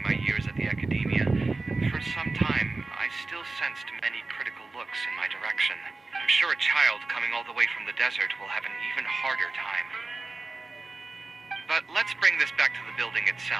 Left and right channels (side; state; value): left; quieter; 3.5 dB